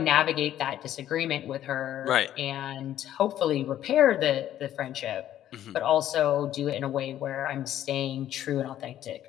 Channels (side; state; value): right; quieter; 11.9 dB